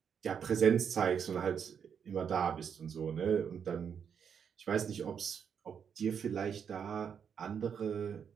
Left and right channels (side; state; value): left; quieter; 7.4 dB